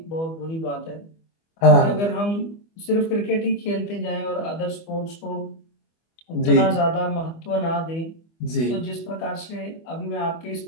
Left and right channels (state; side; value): late; right; 25 ms